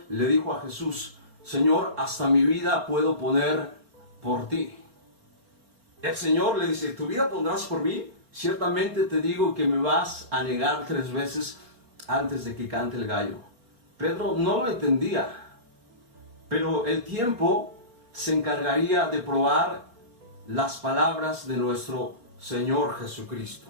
le dijo a Jesús: Señor, hasta mi vida puedo poner por ti. El Señor le dice: ¿tu vida pondrás por mí? Ciertamente te digo que me vas a negar 3 veces antes de que cante el gallo. Pedro no lo entendía, pero el tiempo se encargaría de probar las palabras de nuestro Señor Jesucristo.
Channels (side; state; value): left; late; 4.4 ms